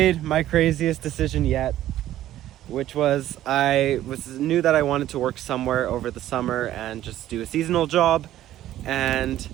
my craziest decision yet, which was knew that I wanted to work somewhere over the summer and just do a seasonal job, and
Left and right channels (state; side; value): quieter; left; 13.2 dB